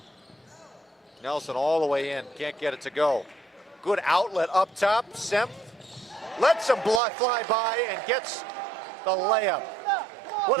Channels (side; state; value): left; drops out; at 7.0 s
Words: Nelson all the way in, can't get it to go. Good outlet up top, Semp lets him fly by and gets the layup. What